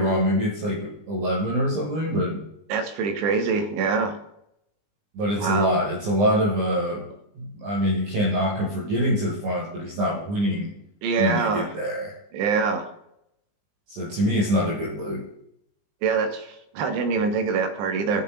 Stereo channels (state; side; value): late; left; 20 ms